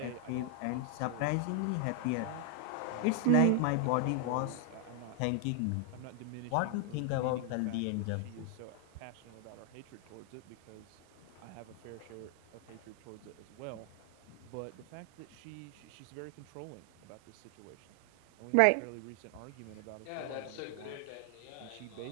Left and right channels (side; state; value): both; different; correlation 0.00